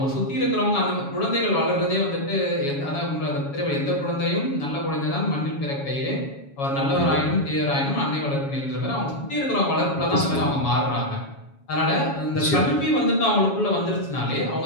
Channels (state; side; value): late; right; 7.2 ms